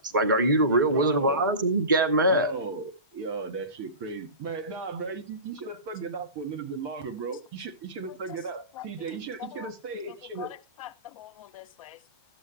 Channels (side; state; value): both; inverted; correlation -0.31